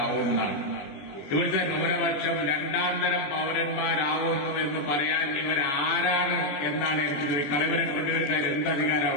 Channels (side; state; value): right; late; 21 ms